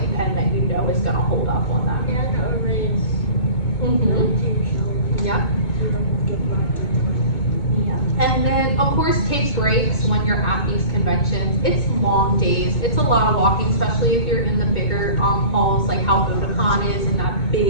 pen that you know is gonna hold up on them. Yeah. And then, of course, take breaks when you're at these conventions. It's long days. It's a lot of walking, especially if you're in the bigger halls, like how Otakon is in that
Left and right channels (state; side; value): late; right; 2.2 ms